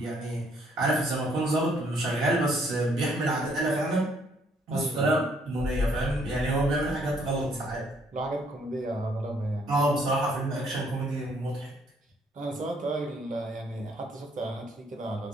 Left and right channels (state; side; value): normal; both; correlation 0.67